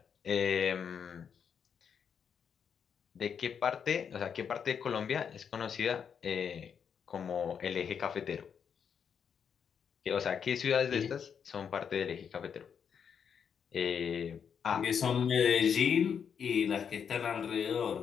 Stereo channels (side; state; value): right; quieter; 7.2 dB